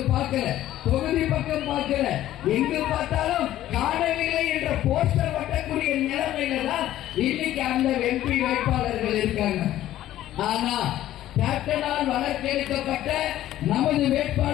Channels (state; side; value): quieter; right; 13.5 dB